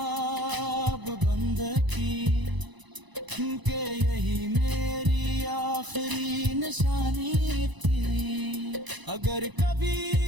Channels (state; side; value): late; left; 1.0 ms